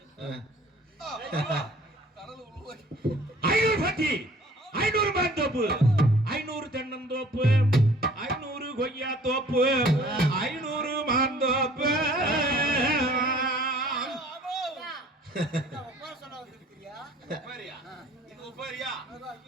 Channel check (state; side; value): normal; both; correlation 0.53